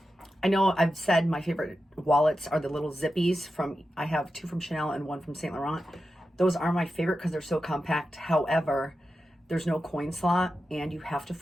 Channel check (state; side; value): normal; both; correlation 0.91